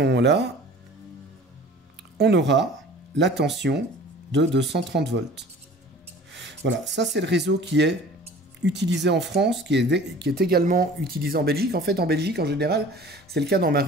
moment-là, on aura la tension de 230 volts. Voilà, ça c'est le réseau qui est utilisé en France, qui est également utilisé en Belgique. En fait, en Belgique, en général, c'est le cas dans ma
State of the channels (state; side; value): normal; both; correlation 0.45